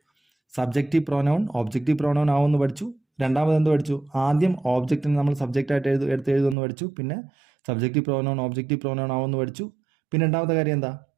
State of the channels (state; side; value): drops out; left; at 6.6 s